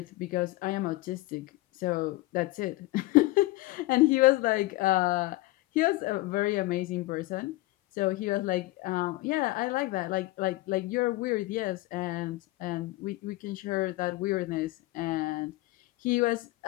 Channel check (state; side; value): quieter; right; 19.5 dB